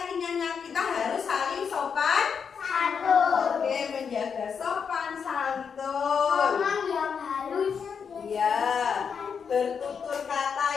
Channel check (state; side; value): quieter; right; 6.5 dB